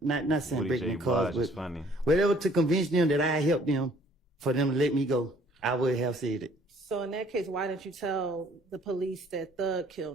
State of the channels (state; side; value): normal; both; correlation 0.59